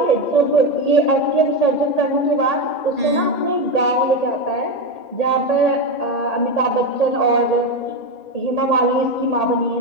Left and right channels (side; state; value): right; late; 1.8 ms